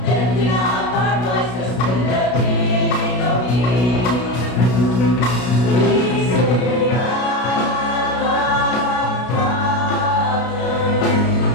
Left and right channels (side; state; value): right; late; 33 ms